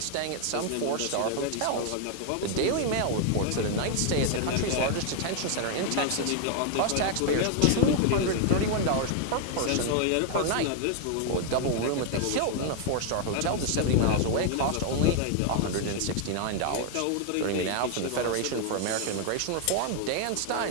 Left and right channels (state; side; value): different; both; correlation 0.00